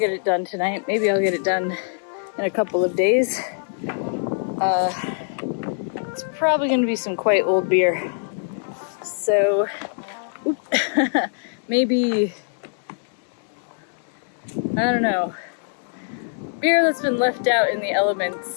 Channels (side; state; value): right; silent; 63 dB below the other